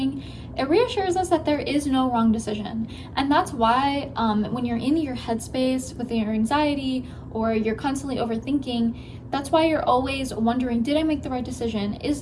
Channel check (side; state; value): both; identical; correlation 1.00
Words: it reassures us that there is no wrong decision. And that's why when you're in your headspace with your anxiety or you're constantly overthinking, that's why you're always wondering, did I make the right decision? Is